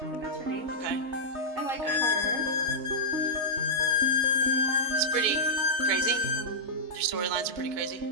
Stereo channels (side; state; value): left; late; 4.5 ms